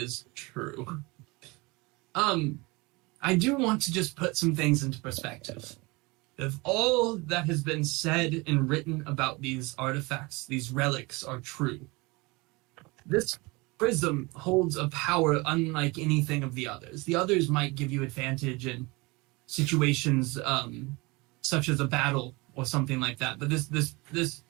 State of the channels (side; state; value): left; quieter; 25.1 dB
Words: true. I do want to just put some things into perspective. If all that has been said and written about these artifacts, these relics, are true, this prism holds a power unlike anything of the others. The others might give you advantage in situations such as a battle or something like that, but this